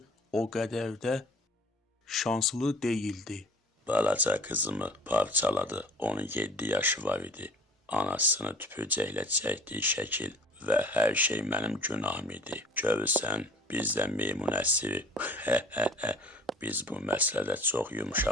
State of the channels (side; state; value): both; normal; correlation 0.47